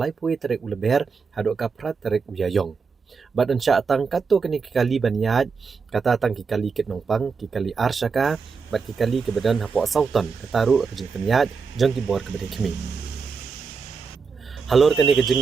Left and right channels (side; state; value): left; quieter; 5.2 dB